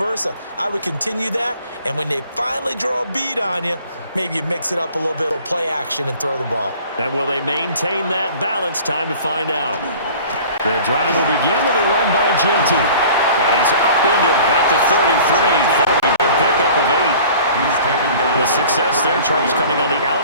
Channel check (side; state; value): both; inverted; correlation -0.47